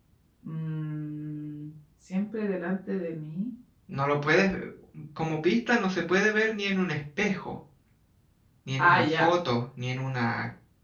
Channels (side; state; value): both; identical; correlation 1.00